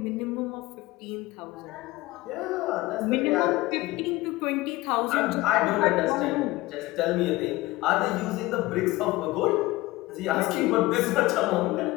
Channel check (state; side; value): quieter; right; 19.6 dB